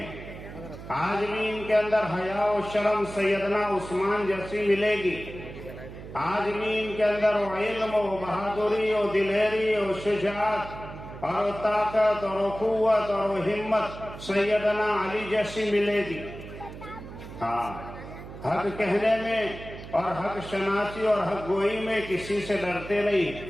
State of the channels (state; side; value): noise; right; hum, 13 dB below the sound